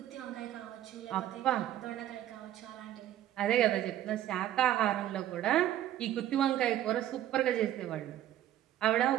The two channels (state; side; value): quieter; left; 12.3 dB